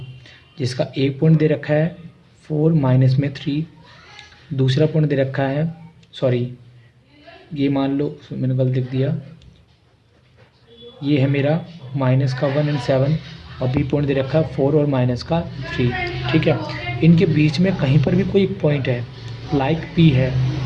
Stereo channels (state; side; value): identical; both; correlation 1.00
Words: जिसका एक पॉइंट दे रखा है 4 माइनस में 3, दूसरा पॉइंट दे रखा है, सॉरी ये मान लो मैंने गलत लिख दिया, ये है मेरा माइनस का 1 एंड 7 और बी पॉइंट दे रखा है 4 और माइनस का 3। ठीक है, इनके बीच में कहीं पर भी कोई एक पॉइंट है लाइक पी है।